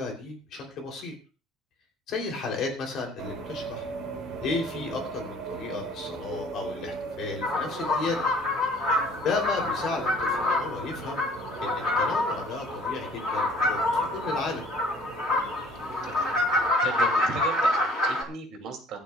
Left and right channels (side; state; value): both; normal; correlation 0.53